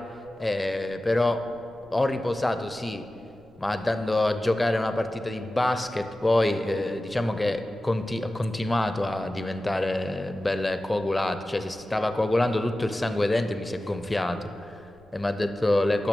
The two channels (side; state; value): left; noise; rumble, 28 dB below the sound